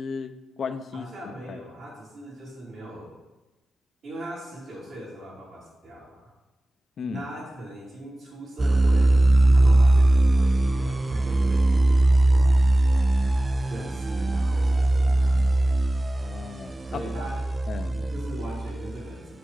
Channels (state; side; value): normal; both; correlation 0.97